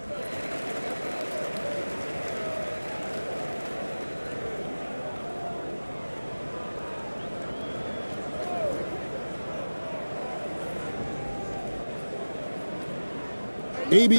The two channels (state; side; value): inverted; both; correlation -1.00